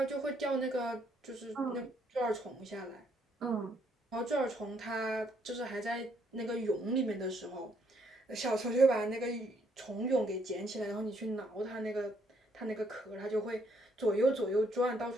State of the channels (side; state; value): both; normal; correlation 0.70